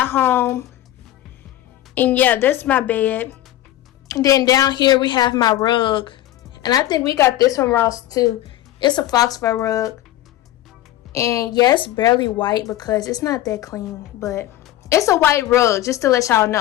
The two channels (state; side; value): quieter; right; 14.2 dB